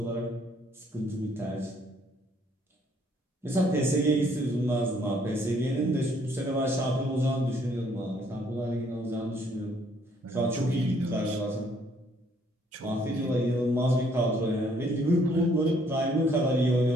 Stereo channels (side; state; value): both; normal; correlation 0.65